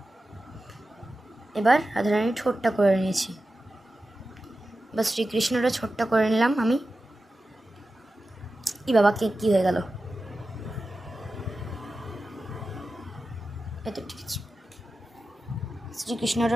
এবার রাধারানীর ঠোঁটটা করে নিয়েছি। বা শ্রীকৃষ্ণটা ছোট্টা করে নিলাম আমি। বাবা কী হয়ে গেল, এত ঠিক আছে।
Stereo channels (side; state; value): both; normal; correlation 0.93